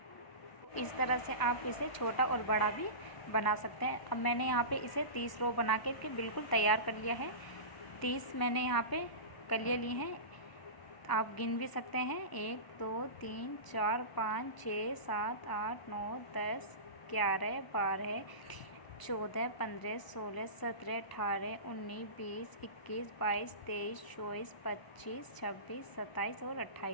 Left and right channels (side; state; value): right; late; 1.0 ms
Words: इस तरह से आप इसे छोटा और बड़ा भी बना सकते हैं। अब मैंने यहाँ पे इसे 30 रो बना के बिल्कुल तैयार कर लिया है। 30 मैंने यहाँ पे कलियाँ ली हैं। आप गिन भी सकते हैं, 1 2 3 4 5 6 7 8 9 10 11 12 14 15 16 17 18 19 20 21 22 23 24 25 26 27 और